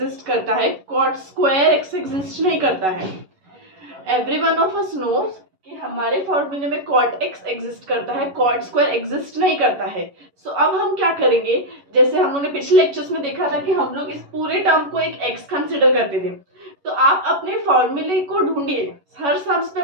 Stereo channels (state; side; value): late; left; 11 ms